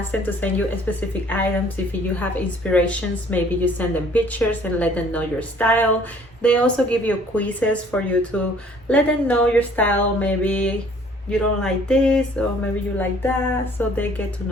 them to send you specific items. If you have inspirations, maybe you send them pictures and let them know your style. They also give you quizzes for you to let them know your style. Maybe you don't like this or maybe you like that, so they get to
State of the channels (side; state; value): both; normal; correlation 0.56